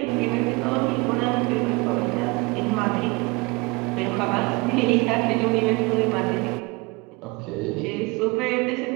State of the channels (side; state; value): left; quieter; 26.1 dB